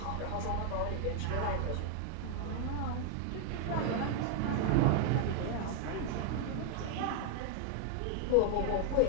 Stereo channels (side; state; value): both; different; correlation 0.00